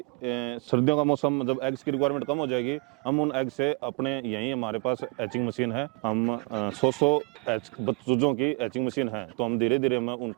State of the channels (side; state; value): left; quieter; 31.3 dB